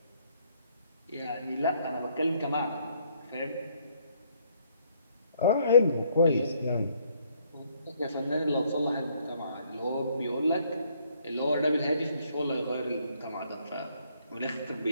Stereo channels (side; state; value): both; inverted; correlation -0.67